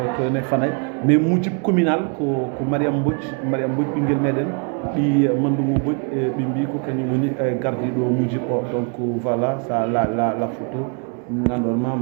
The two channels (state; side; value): quieter; left; 38.3 dB